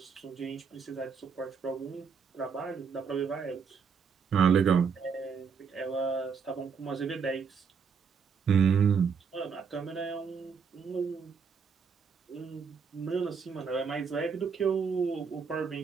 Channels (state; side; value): quieter; left; 6.0 dB